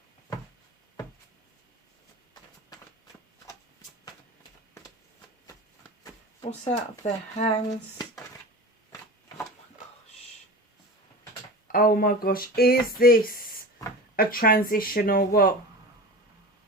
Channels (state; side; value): normal; both; correlation 0.32